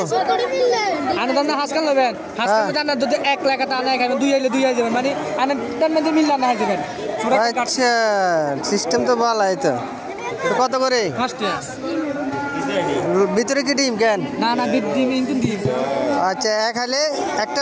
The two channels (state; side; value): identical; both; correlation 1.00